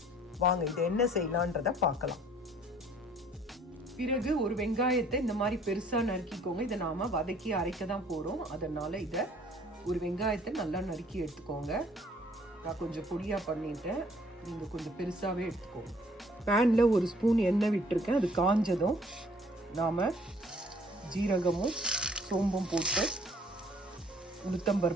வாங்க இதை என்ன செய்யலான்றதை பார்க்கலாம். பிறகு ஒரு வெங்காயத்தை இந்த மாதிரி பெருசாக நறுக்கிக்கோங்க. இதை நாம் வதக்கி அரைக்க தான் போகிறோம். அதனால் இதை ஒரு வெங்காயத்தை நல்லா நறுக்கி எடுத்துக்கோங்க. நான் கொஞ்சம் பொடியாக பண்ணிட்டேன், நீங்கள் கொஞ்சம் பெருசாகவே எடுத்துக்கோங்க. பேனில் 1 ஸ்பூன் எண்ணெய் விட்டுருக்கேன். அது காஞ்சதும் நாம் ஜீரகமும் சோம்பும் போட்டு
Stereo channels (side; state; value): both; normal; correlation 0.58